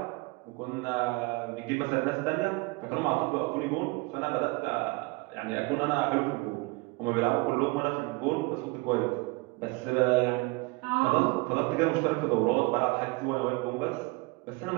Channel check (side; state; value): left; quieter; 25.7 dB